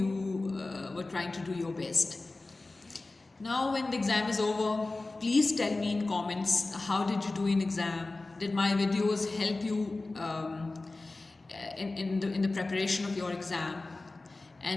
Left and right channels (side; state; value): right; quieter; 3.2 dB